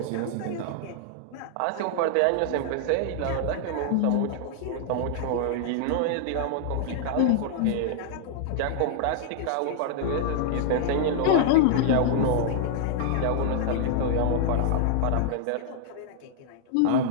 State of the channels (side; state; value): both; different; correlation -0.01